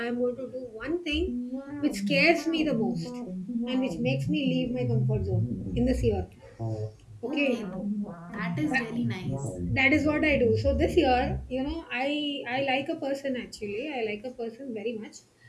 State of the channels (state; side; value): identical; both; correlation 1.00